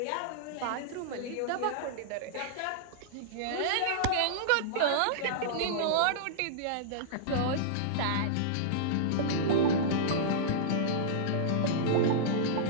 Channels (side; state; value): both; different; correlation -0.03